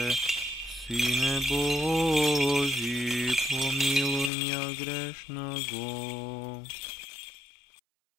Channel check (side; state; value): right; drops out; at 4.3 s